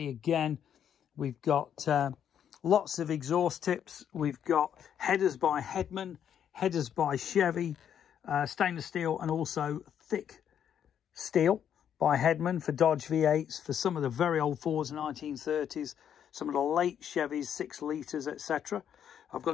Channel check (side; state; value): right; quieter; 9.1 dB